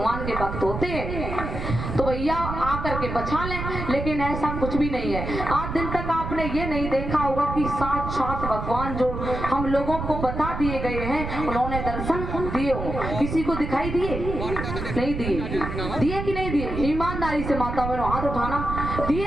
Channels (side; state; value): right; noise; rumble, 5 dB below the sound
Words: के भक्त होते हैं, तो भैया आकर के बचा लें। लेकिन ऐसा कुछ भी नहीं है। आज दिन तक आपने ये नहीं देखा होगा कि साथ भगवान जो हम लोगों को बता दिए गए हैं उन्होंने दर्शन दिए हो। किसी को दिखाई दिए? नहीं दिए। दिए कि नहीं दिए? ईमानदारी से माता बहनों हाथ उठाना, दिए